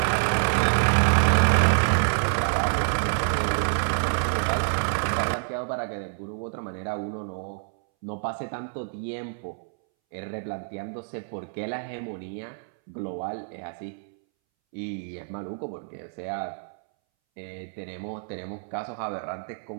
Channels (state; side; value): silent; left; 60 dB below the other